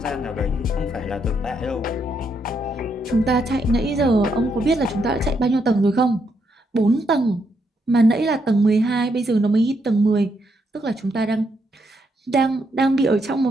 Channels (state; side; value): normal; both; correlation 0.77